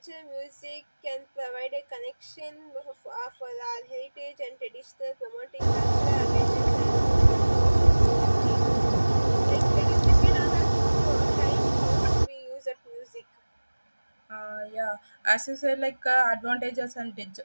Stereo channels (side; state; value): both; inverted; correlation -1.00